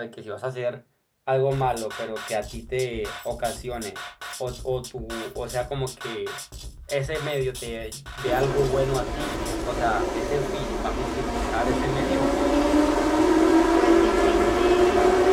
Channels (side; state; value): both; identical; correlation 1.00